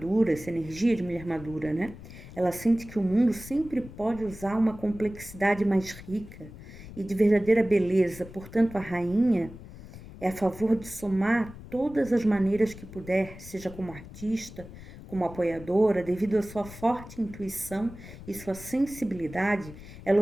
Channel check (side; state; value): left; noise; rumble, 15 dB below the sound